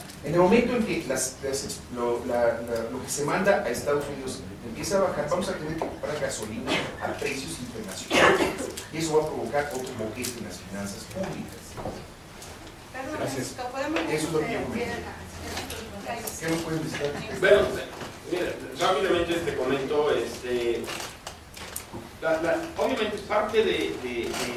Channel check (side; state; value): both; identical; correlation 1.00